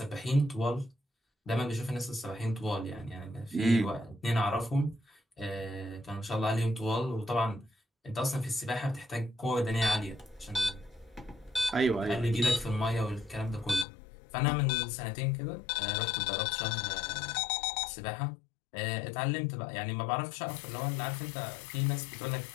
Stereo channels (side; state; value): right; drops out; at 13.9 s